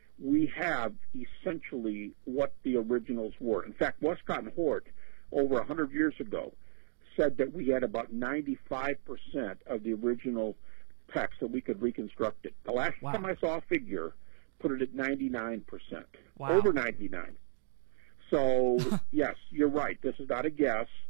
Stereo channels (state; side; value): silent; left; digital silence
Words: we have essentially what the originals were. In fact, Westcott and Hort, over 100 years ago, said that we had about 95% of the original text, that we could reconstruct it. The last time I saw a figure put it at 99%. Wow. Over 99. So, yes, you're right. This is not a guess.